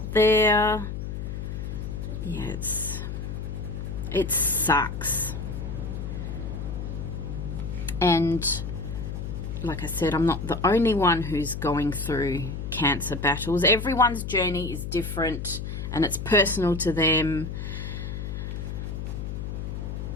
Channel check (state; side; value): noise; left; hum, 5 dB below the sound